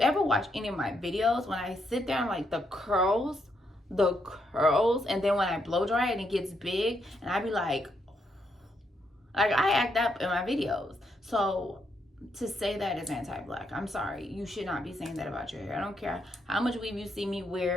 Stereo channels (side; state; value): both; normal; correlation 0.78